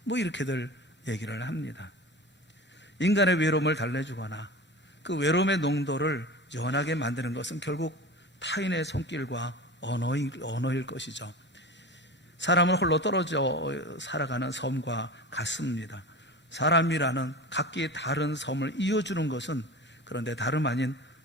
뭐 이렇게들 얘기를 합니다. 인간의 외로움을 달래주거나 그 외로움의 농도를 연하게 만드는 것은 결국 타인의 손길과 언어일 것이죠. 사람을 홀로 떨어져 살아가는 섬과 같습니다. 사람이라는 각기 다른 섬을 이어주는 것은 그런데 다름 아닌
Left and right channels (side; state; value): both; normal; correlation 0.32